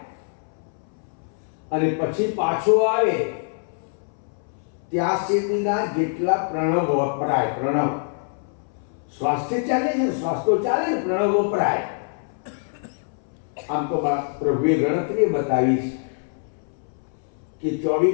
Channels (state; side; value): silent; right; 62 dB below the other